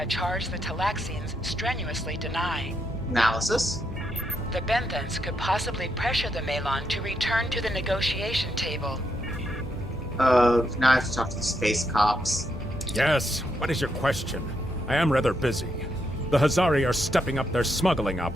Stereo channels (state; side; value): normal; both; correlation 0.80